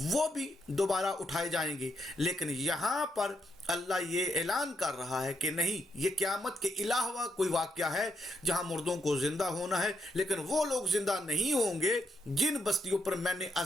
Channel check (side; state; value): both; normal; correlation 0.78